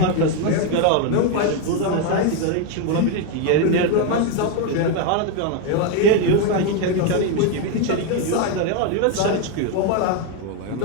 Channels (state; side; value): different; both; correlation 0.01